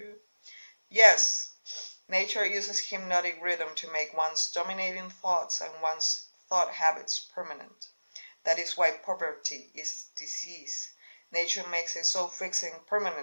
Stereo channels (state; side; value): inverted; both; correlation -1.00